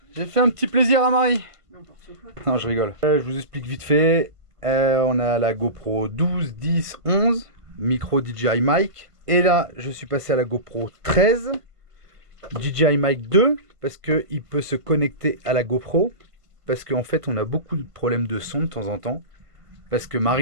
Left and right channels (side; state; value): left; late; 1.5 ms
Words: j'ai fait un petit plaisir à Marie. Non, je rigole. Je vous explique vite fait. On a la GoPro 12, 10, 11, micro DJI mic. Et là, je suis passé à la GoPro 13, DJI mic 2, parce qu'il peut se connecter à la GoPro. Parce qu'en fait, on a beaucoup de problèmes de son de temps en temps. Parce que